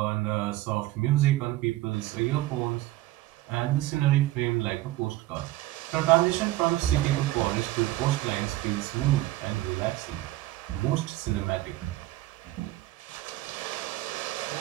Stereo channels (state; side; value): quieter; left; 16.7 dB